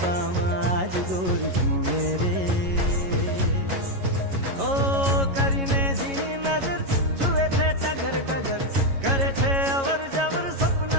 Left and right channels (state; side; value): late; left; 11 ms